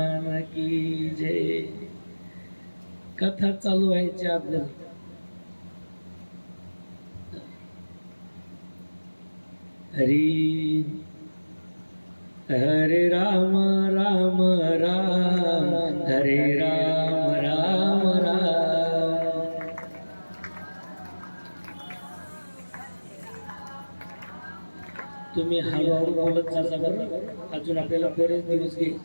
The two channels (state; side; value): inverted; both; correlation -1.00